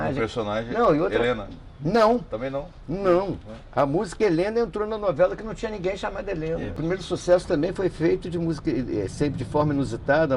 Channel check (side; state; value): both; identical; correlation 1.00